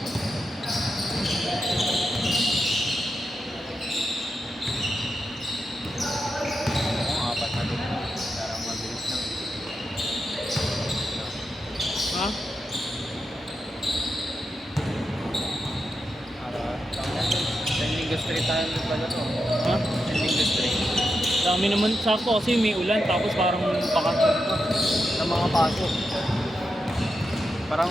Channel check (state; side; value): normal; both; correlation 0.87